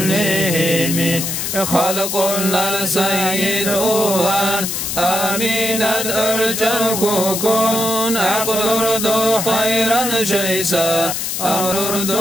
خلق السيد أوان آمينة أرجل كون عقل أردو خيرا شيسا أمر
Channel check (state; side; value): noise; left; hiss, 3 dB below the sound